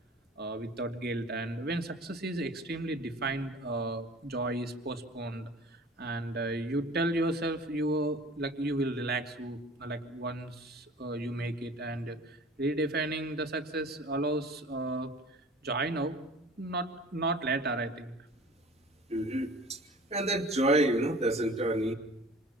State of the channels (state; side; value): normal; both; correlation 0.44